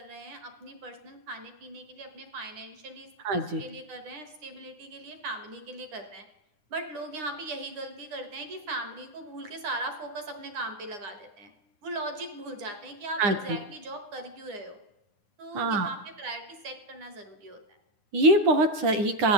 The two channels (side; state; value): left; late; 9.8 ms